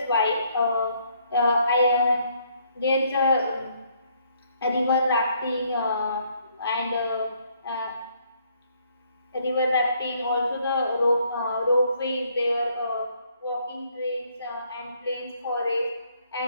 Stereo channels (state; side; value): inverted; both; correlation -0.68